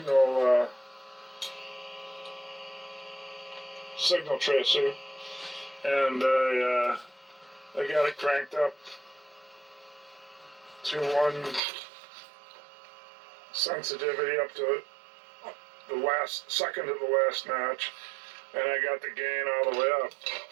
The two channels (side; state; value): left; drops out; at 11.6 s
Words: tracer, and I got it cranked up to 1 sensitivity up to the second to the last notch, and I got the gain all the way up.